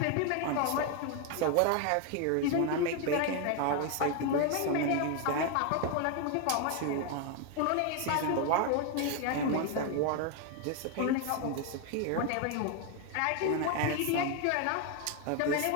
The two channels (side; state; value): both; different; correlation 0.01